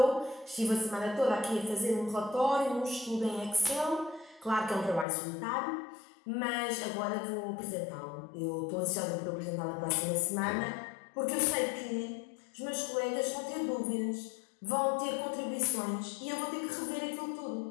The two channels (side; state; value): right; drops out; at 5.1 s